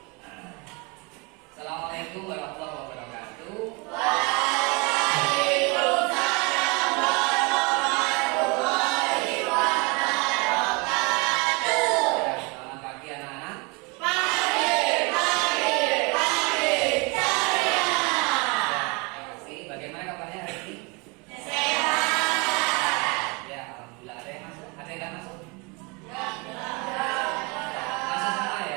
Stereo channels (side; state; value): left; quieter; 29.3 dB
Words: Assalamualaikum warahmatullahi wabarakatuh. Waalaikumsalam warahmatullahi wabarakatuh. Selamat pagi anak-anak. Pagi ceria. Bagaimana kabarnya hari ini? Sehat. Ya, alhamdulillah. Ada yang masuk? Ada yang nggak masuk? Masuk Semua ya?